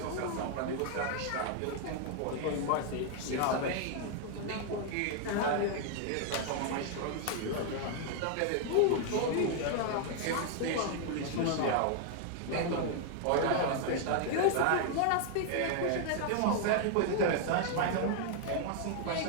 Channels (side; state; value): both; different; correlation 0.00